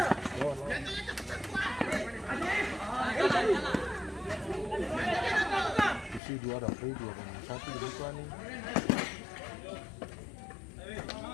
Isi dua ada free dua satu jadi tuan nih.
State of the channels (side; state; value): right; drops out; at 6.2 s